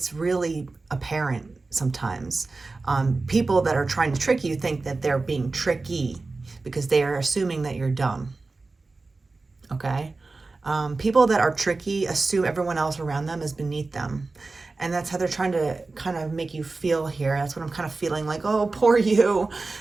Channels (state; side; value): quieter; left; 3.6 dB